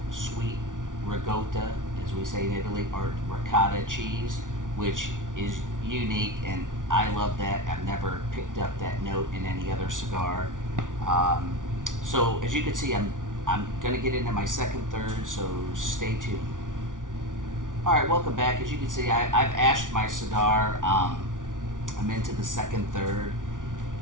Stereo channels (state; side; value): late; left; 0.88 ms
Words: sweet ricotta, as we say in Italy, or ricotta cheese, which is unique, and I love that. I've never picked up that note in any other cigar. So as you can see, I'm going to get into my second third, so stay tuned. Alright, welcome back. As you can see, I've ashed my cigar. I'm into the second third.